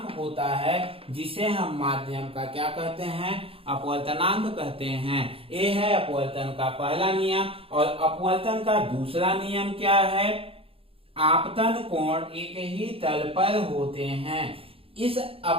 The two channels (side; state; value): left; late; 0.27 ms